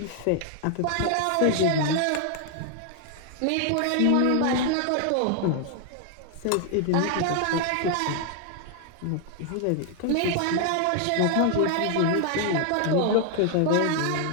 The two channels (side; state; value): both; different; correlation 0.00